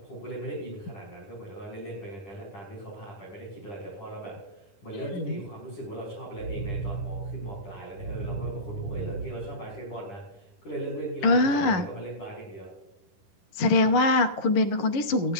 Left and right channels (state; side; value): late; right; 10 ms